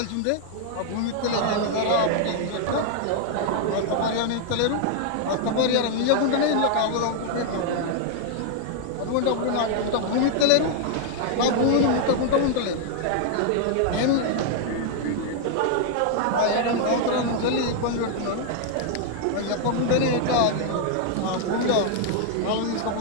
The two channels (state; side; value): different; both; correlation 0.00